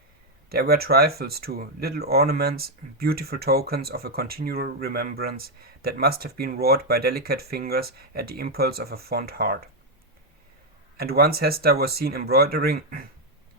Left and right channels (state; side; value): normal; both; correlation 0.02